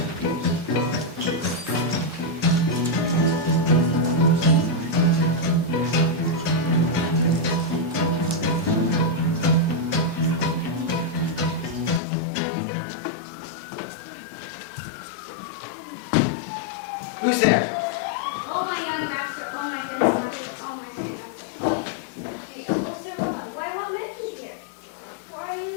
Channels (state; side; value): drops out; right; at 12.0 s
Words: Who's there? Oh, my young master, oh, my dense master, oh, my sweet master, oh, the holster one. Why, what makes you here? Why